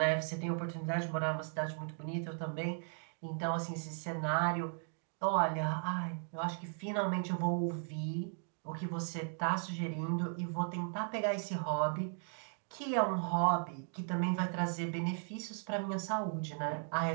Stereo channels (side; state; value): left; silent; 53 dB below the other